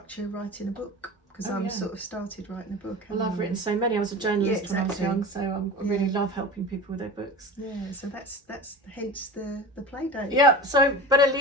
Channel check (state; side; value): normal; both; correlation 0.32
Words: writing a book, because I'm sort of started writing a book. Well, I've written so many. I was a journalist when I was young, so I really love helping people with their books. Yeah, so that's hence the play date. Yeah, so better